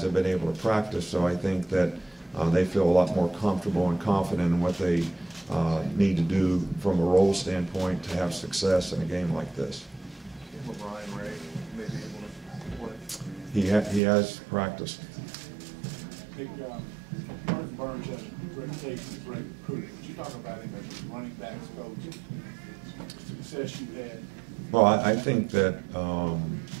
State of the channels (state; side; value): drops out; left; at 14.0 s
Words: have been able to practice, so I think that they feel a lot more comfortable and confident in what they need to do from a role standpoint to have success in a game like this. He has practiced. Nick, Martin Burns has a reputation as a great recruiter. Would you talk about him as a running backs coach, the success you had? Well, I think that